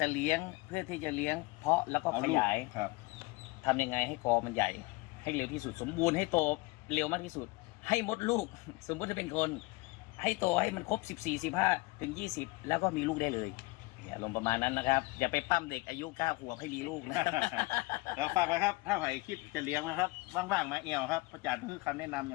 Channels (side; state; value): right; quieter; 23.7 dB